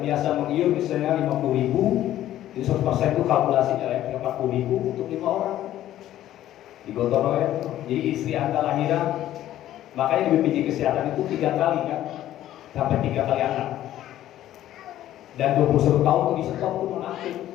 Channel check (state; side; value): quieter; right; 13.0 dB